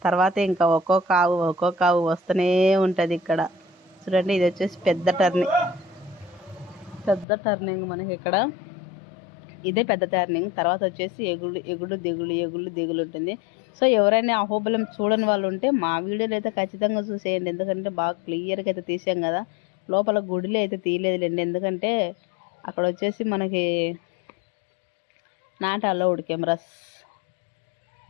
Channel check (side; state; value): right; drops out; at 7.2 s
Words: తర్వాత ఇంకా ఒక్కొక్క ఆవు వస్తూనే ఉంటుంది ఇక్కడ. చూడండి ఇది వచ్చేసి పెద్ద టర్నింగ్ మనకి ఇక్కడ. ఇదే పెద్ద టర్నింగ్. తర్వాత వచ్చేసి ఎగుడు దిగులు ఉంటుంది. సో ఎవరైనా అహోబిలం చూడని వాళ్ళు ఉంటే మా వీడియోలు అయితే ఖచ్చితంగా చూసేయండి. ఎందుకంటే బాగా క్లియర్గా అయితే తీసాం కదా. లోపల గుడిలో అయితే తీయలేదులేండి, ఎందుకంటే అక్కడ వచ్చేసి మనకి నాట్ అలౌడ్ కెమెరాస్.